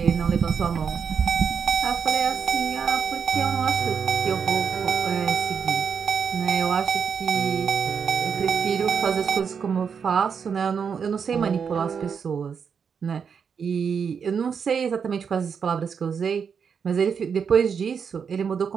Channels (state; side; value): quieter; left; 6.6 dB